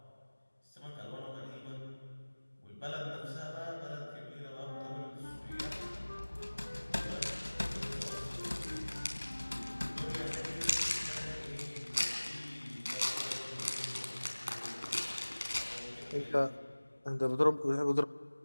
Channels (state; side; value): inverted; both; correlation -1.00